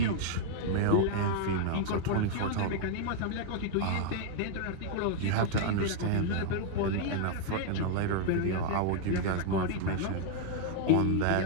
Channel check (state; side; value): different; both; correlation -0.01